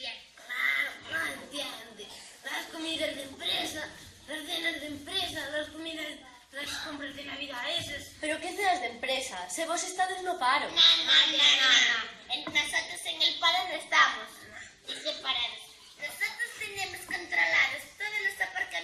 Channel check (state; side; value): identical; both; correlation 1.00